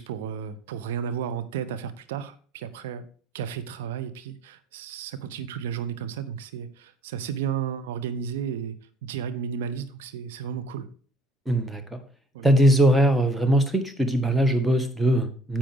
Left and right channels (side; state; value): both; normal; correlation 0.58